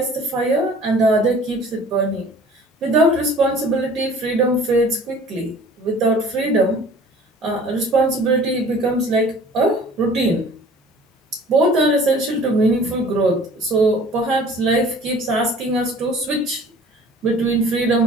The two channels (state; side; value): normal; both; correlation 0.49